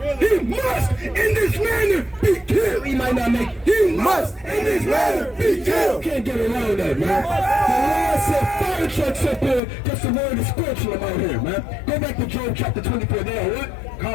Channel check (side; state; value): right; drops out; at 9.6 s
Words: He must in this manner be killed. He might not make. He must in this manner be killed. Can't get around that, man. The Lord said fire trucks up here because the word is scorching them out here, man. Go back to Job chapter 24. There, what?